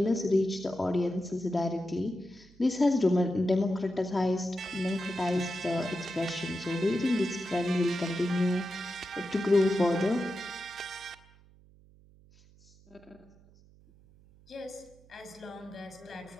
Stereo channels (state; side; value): noise; right; hum, 26 dB below the sound